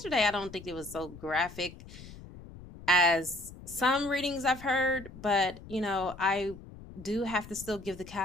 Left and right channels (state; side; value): noise; left; rumble, 16 dB below the sound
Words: I don't think it was so graphic as some readings I've heard, but you know, I do have to still give the